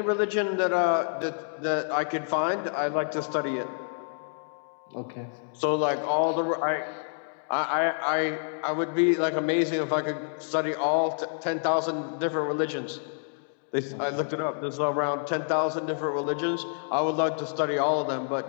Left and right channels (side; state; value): right; silent; digital silence